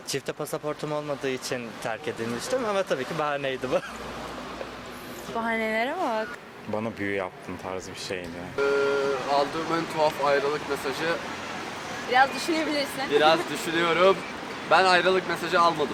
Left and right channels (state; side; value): identical; both; correlation 1.00